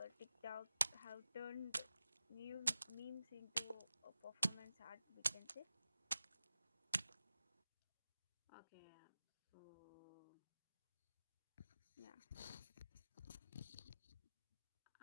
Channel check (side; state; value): both; inverted; correlation -0.94